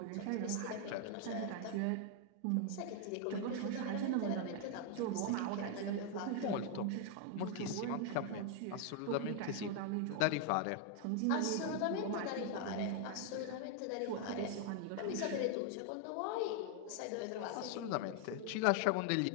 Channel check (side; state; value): both; different; correlation 0.00